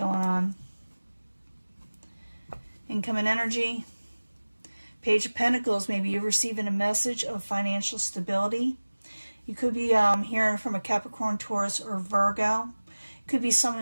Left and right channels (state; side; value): inverted; both; correlation -1.00